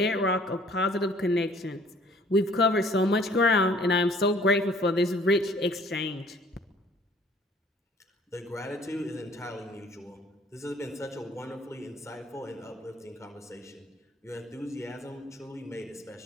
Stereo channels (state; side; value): normal; both; correlation 0.56